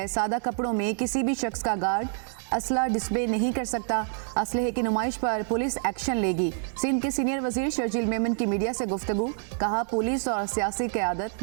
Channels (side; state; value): left; silent; 60 dB below the other